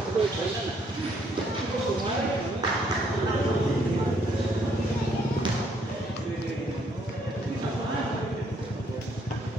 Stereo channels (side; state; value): both; normal; correlation 0.69